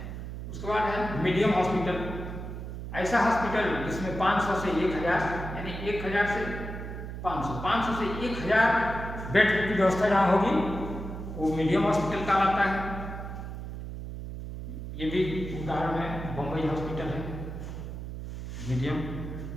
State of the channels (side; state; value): right; noise; hum, 8 dB below the sound